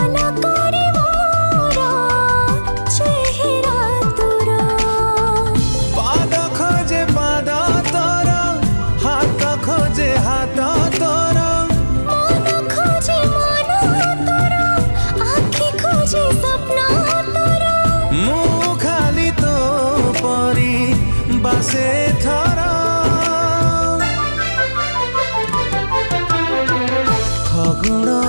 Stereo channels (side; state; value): both; inverted; correlation -1.00